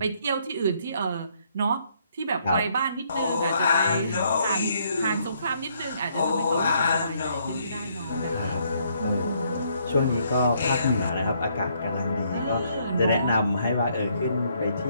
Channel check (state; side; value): inverted; both; correlation -0.70